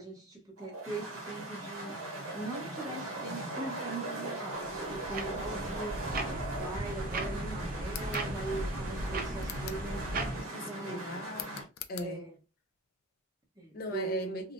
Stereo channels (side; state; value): both; normal; correlation 0.35